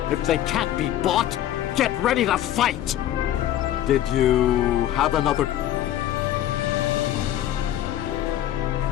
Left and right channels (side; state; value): right; quieter; 12.4 dB